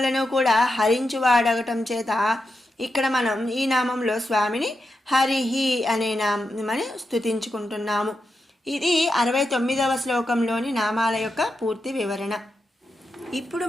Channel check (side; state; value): both; normal; correlation 0.87